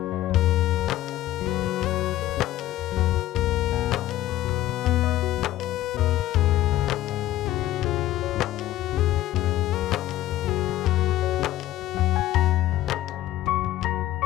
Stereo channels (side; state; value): right; quieter; 14.6 dB